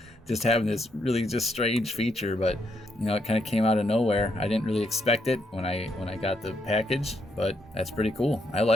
just having this really just strange feature. But it kind of came out of nowhere. I didn't really expect it when I got the package, but that's pretty cool. I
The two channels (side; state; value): both; normal; correlation 0.77